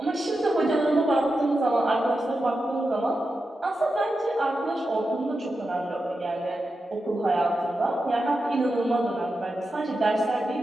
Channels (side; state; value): both; normal; correlation 0.89